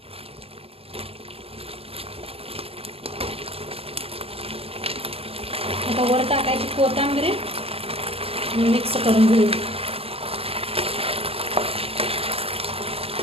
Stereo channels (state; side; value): late; left; 0.28 ms